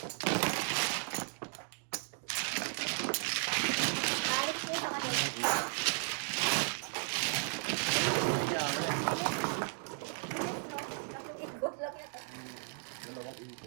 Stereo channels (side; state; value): left; silent; 54 dB below the other